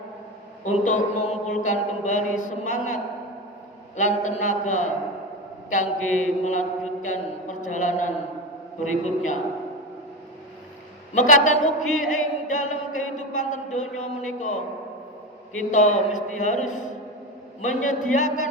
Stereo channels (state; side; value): normal; both; correlation 0.20